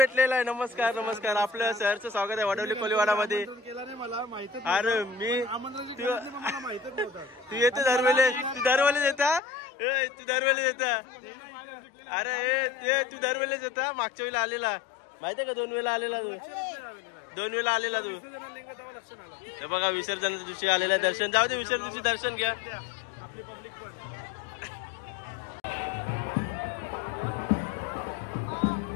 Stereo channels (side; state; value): right; drops out; at 9.4 s